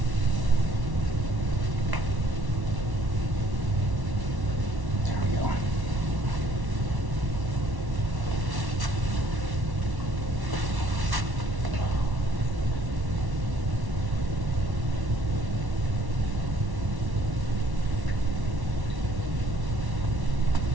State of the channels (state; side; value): late; left; 1.1 ms